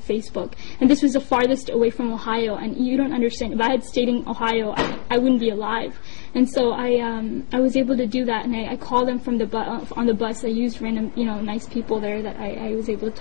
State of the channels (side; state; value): right; silent; digital silence